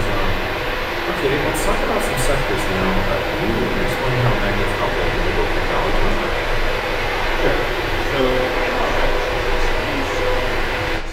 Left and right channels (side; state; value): both; identical; correlation 1.00